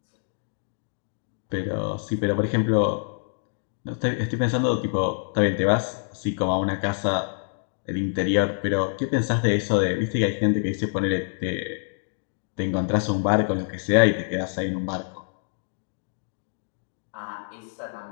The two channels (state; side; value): silent; right; digital silence